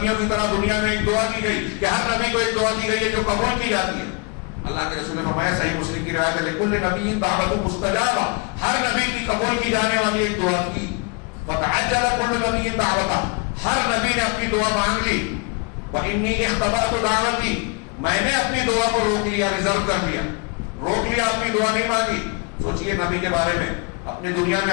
کی طرح دنیا میں ایک دعا دی گئی کہ ہر نبی کو ایک دعا دی گئی ہے جو قبول کی جاتی ہے. اللہ کے رسول نے فرمایا، صحیح مسلم کی روایت ہے، لکل نبی دعوت مستجابہ، ہر نبی کی قبول کی جانے والی ایک دعا تھی. فتعجل كل نبی دعوتہ، ہر نبی نے اپنی دعا مانگ لی. وانی اختبأت دعوتی، میں نے اپنی دعا کو روک لیا، ریزرو کر دیا، روک لیا، اپنی دعا نہیں مانگی. سوچئے نبی کے بارے میں، اپنی دنیا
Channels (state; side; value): quieter; right; 31.6 dB